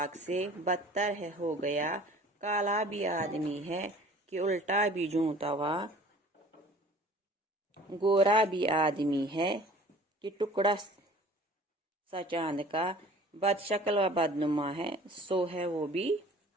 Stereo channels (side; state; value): both; normal; correlation 0.48